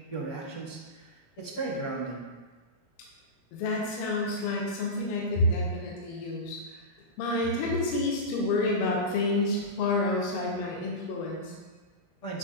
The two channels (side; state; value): right; late; 17 ms